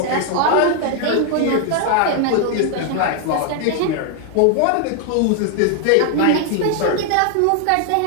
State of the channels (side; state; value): both; different; correlation 0.00